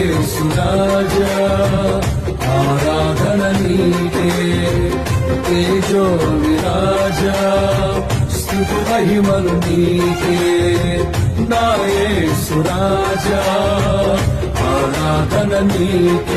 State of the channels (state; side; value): identical; both; correlation 1.00